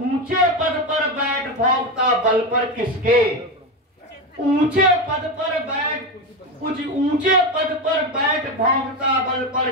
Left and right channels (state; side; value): normal; both; correlation 0.15